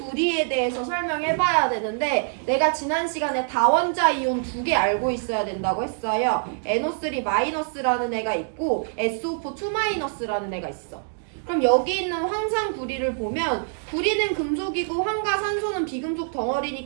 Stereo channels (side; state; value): left; silent; digital silence